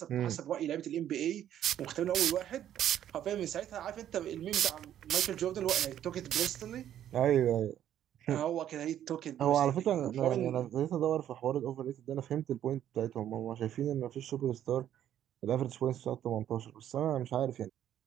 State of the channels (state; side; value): quieter; left; 10.9 dB